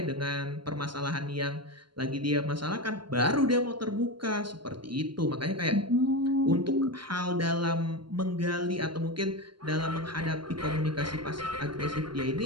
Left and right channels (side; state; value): left; late; 0.72 ms